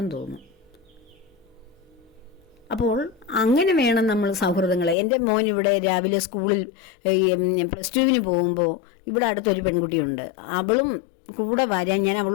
തോന്നും. അപ്പോൾ അങ്ങനെ വേണം നമ്മൾ സൗഹൃദങ്ങളെ. എൻ്റെ മോൻ ഇവിടെ രാവിലെ സ്കൂളിൽ +2 പോകുമ്പോൾ ഇവിടെ അടുത്തൊരു പെൺകുട്ടിയുണ്ട്. അവളും കൂടെ വരാൻ ഞാൻ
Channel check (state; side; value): drops out; right; at 5.0 s